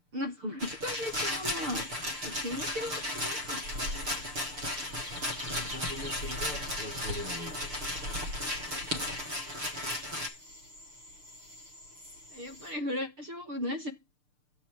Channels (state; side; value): late; left; 6.7 ms